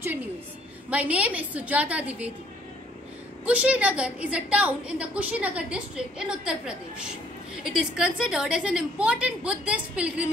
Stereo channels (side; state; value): both; normal; correlation 0.62